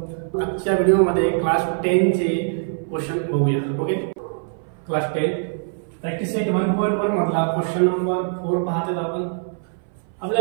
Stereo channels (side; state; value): left; silent; 60 dB below the other